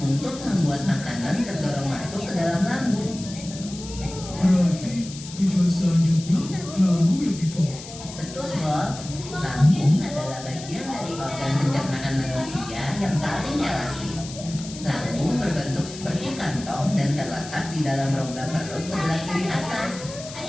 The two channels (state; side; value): noise; left; hiss, 14 dB below the sound